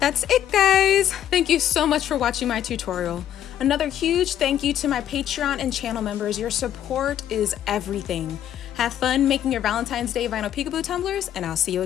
it, guys! Thank you so much for watching my tutorial. Another huge thank you to my Patreon and channel members. Your support is everything. Have fun making your Valentine's Day vinyl peekaboo tumblers, and I'll see you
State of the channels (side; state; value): right; quieter; 10.9 dB